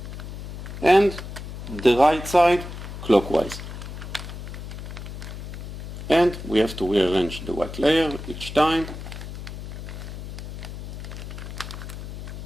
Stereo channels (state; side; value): noise; left; hum, 9 dB below the sound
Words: and the right side clockwise. And we have to rearrange the white layer each time.